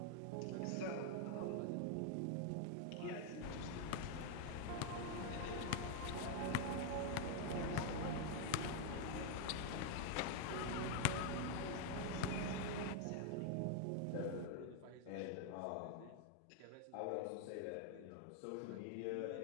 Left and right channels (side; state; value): both; different; correlation 0.00